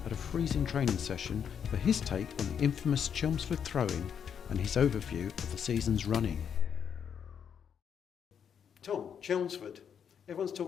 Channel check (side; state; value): right; quieter; 7.8 dB